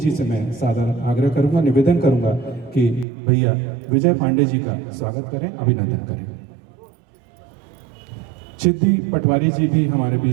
से मैं सादर आग्रह करूंगा, निवेदन करूंगा कि भैया विजय पांडे जी का स्वागत करें, अभिनंदन करें। सिद्धि पटवारी जी भी हमारे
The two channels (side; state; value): left; drops out; at 3.1 s